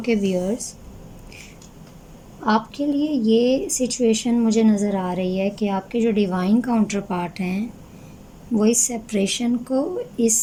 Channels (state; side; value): identical; both; correlation 1.00